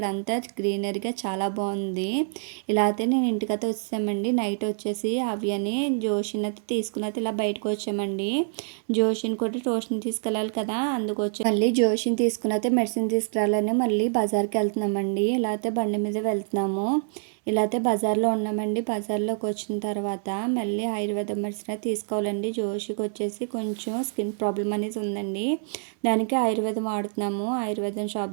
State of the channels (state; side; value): silent; left; digital silence